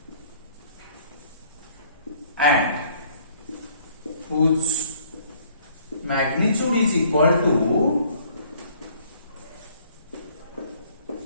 and whose magnitude is equal to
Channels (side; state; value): both; inverted; correlation -0.59